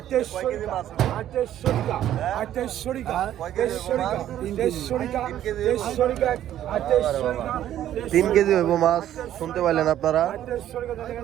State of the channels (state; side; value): quieter; left; 11.8 dB